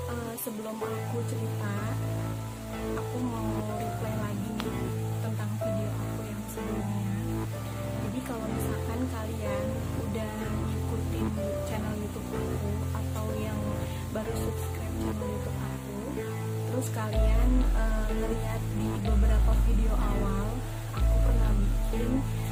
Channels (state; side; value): identical; both; correlation 1.00